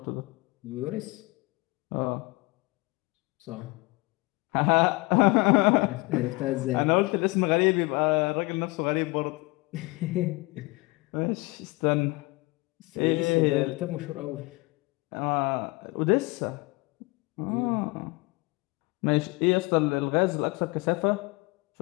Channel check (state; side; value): quieter; right; 24.6 dB